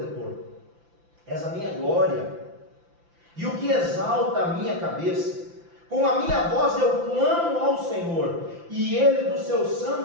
És a minha glória. E o que exalta a minha cabeça. Com a minha voz eu clamo ao Senhor. E Ele do seu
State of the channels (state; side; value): late; left; 5.9 ms